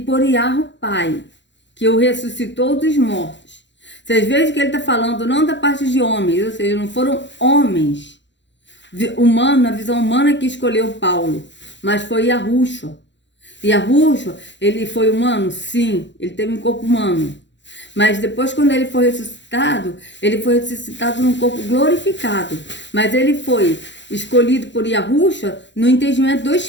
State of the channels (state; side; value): late; right; 0.52 ms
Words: Yahu Pai, que o ressuscitou dos mortos. Vocês veem que ele está falando não da parte de homens, ou seja, não foram homens humanos, a visão humana que escolheu Paulo, mas foi Yahushua. Yahushua, ele foi humano? Sim, ele teve um corpo humano. Mas depois, quando ele foi ressuscitado num corpo glorificado. Mas ele foi escolhido por Yahushua no entendimento do